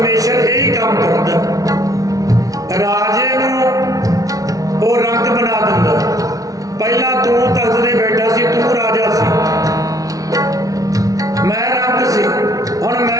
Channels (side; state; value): left; late; 0.17 ms